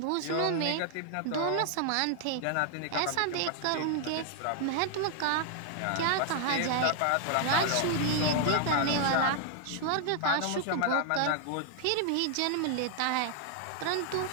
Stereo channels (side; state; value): both; different; correlation 0.00